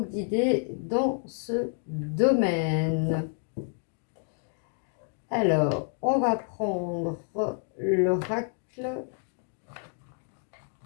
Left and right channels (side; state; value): right; silent; 56 dB below the other